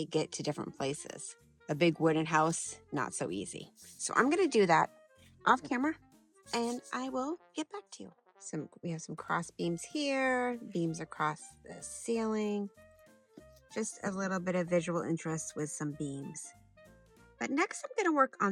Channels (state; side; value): identical; both; correlation 1.00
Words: get to different places. A big wooden house, not so easy. So I'm gonna do that off camera and I will get back to you. We have some cross beams here, beams across the ceiling. Just a little bit of visual interest with some beams. But next I'm gonna work